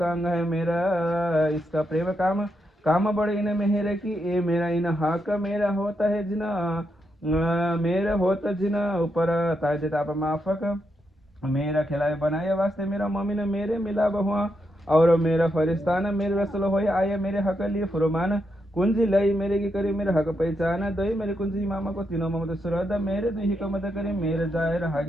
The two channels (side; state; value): both; normal; correlation 0.82